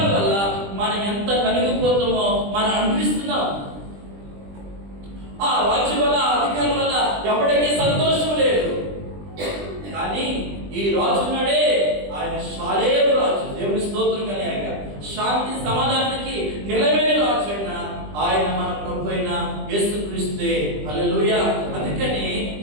వల్ల మనం ఎంత నలిగిపోతామో మనం అనిపిస్తున్నాం. ఆ రాజుల వల్ల, అధికారుల వల్ల ఎవరికీ సంతోషం లేదు. కానీ ఈ రాజున్నాడే ఆయన శాలేరు రాజు. దేవుని స్తోత్రం కలగాక. శాంతి సమాధానానికి నిలబడిన రాజు అయినా ఆయన మన ప్రభు అయిన యేసుక్రీస్తే. హల్లెలూయా. అందుకని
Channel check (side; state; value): left; late; 20 ms